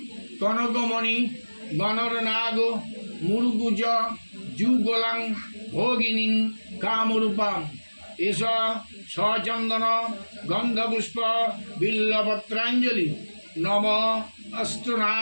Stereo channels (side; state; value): both; inverted; correlation -1.00